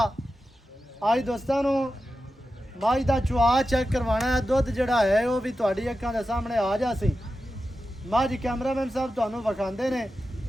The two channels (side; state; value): both; normal; correlation 0.91